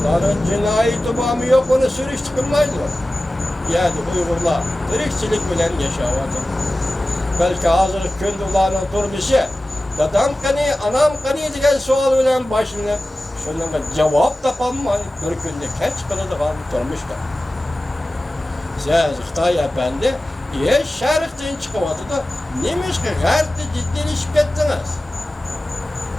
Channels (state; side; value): normal; both; correlation 0.96